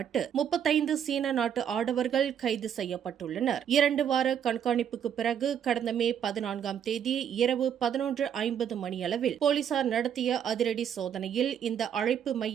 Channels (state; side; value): quieter; left; 8.9 dB